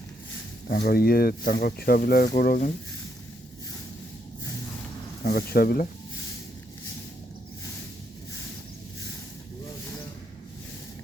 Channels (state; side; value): normal; both; correlation 0.76